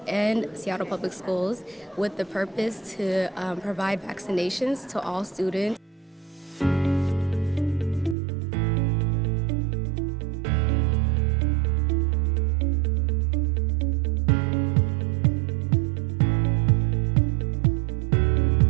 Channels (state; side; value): drops out; left; at 8.2 s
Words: and Seattle Public Schools with the purpose to provide vaccinations to all students.